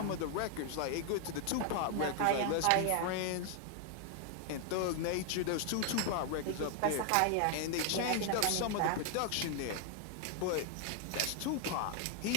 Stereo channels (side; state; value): both; different; correlation 0.00